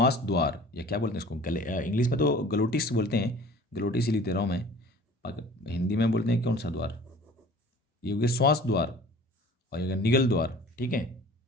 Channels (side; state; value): both; normal; correlation 0.46